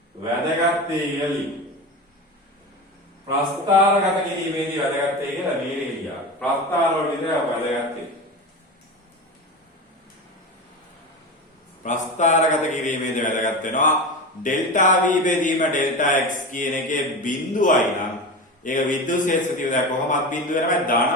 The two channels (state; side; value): normal; both; correlation 0.25